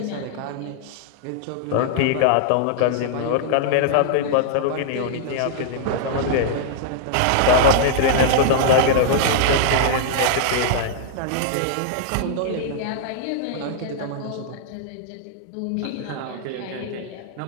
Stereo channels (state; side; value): different; both; correlation -0.01